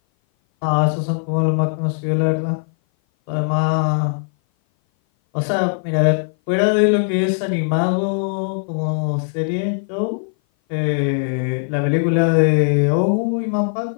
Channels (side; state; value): right; silent; 57 dB below the other